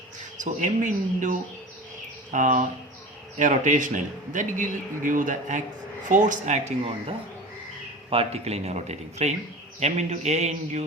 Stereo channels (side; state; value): both; normal; correlation 0.33